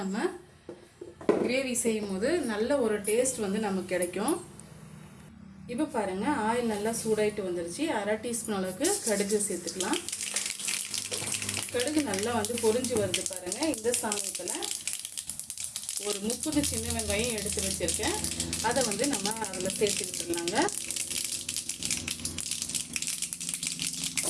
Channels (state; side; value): identical; both; correlation 1.00